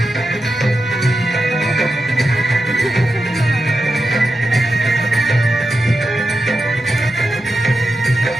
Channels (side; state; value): both; normal; correlation 0.90